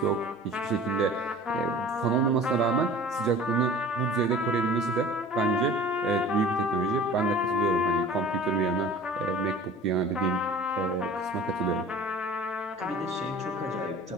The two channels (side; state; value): both; normal; correlation 0.43